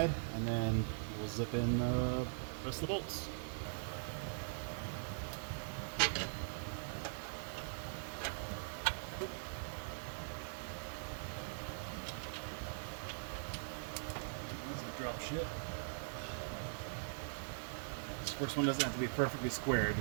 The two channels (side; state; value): left; silent; digital silence